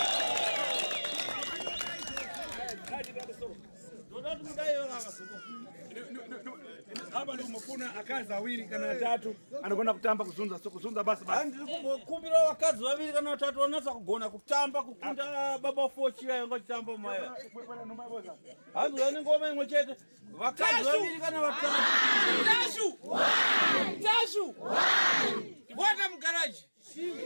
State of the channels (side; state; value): both; inverted; correlation -1.00